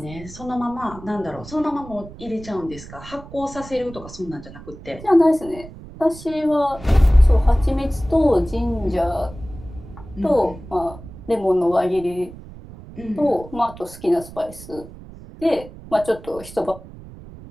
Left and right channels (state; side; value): noise; right; rumble, 16 dB below the sound